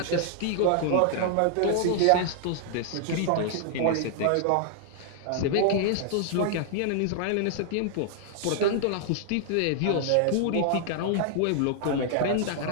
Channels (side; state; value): both; different; correlation -0.01